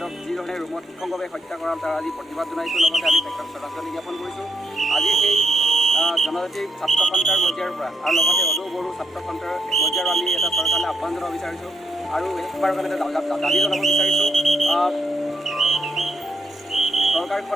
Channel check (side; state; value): both; normal; correlation 0.77